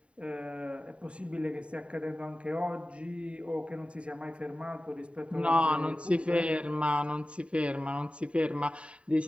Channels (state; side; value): late; left; 0.060 ms